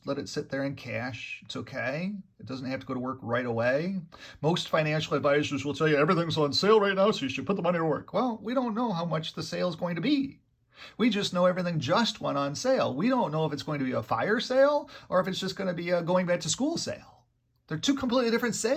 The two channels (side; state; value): both; identical; correlation 1.00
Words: let it sit there in cash. It's okay. It doesn't have to go to work right away. Most financial advisors will tell you everything's on sale right now, so you should put the money to work. Well, we don't know how much the sale is going to be. We just know everything just went on sale. We don't know if it's going to be a fire sale or if it's just going to be a going back to school sale. They're two completely different